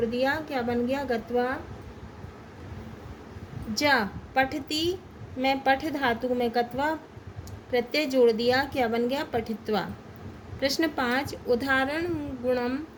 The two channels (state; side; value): identical; both; correlation 1.00